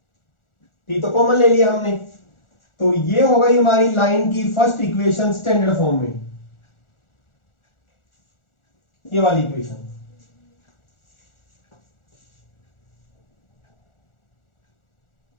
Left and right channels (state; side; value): late; right; 1.4 ms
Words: t तो कॉमन ले लिया हमने, तो ये हो गई हमारी लाइन की फर्स्ट इक्वेशन स्टैंडर्ड फॉर्म में, ये वाली equation.